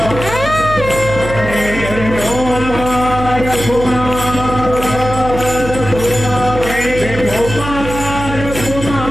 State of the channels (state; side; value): noise; right; hum, 8 dB below the sound